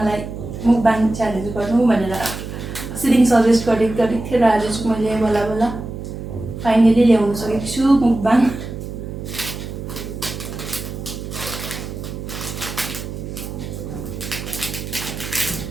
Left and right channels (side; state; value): right; noise; hum, 8 dB below the sound